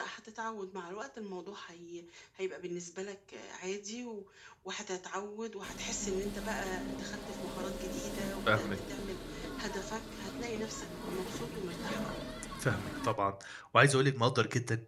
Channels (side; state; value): both; identical; correlation 1.00